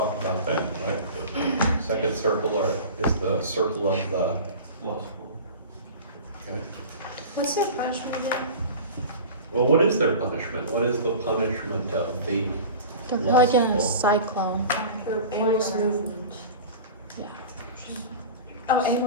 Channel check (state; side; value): inverted; both; correlation -0.36